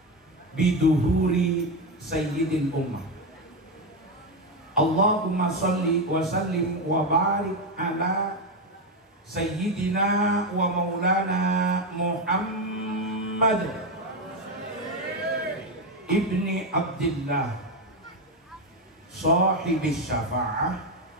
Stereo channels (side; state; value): both; normal; correlation 0.10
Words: biduhuri sayyidil ummah. Allahumma salli wa sallim wa barik ala sayyidina wa maulana Muhammad ibni Abdillah sahibis syafa'ah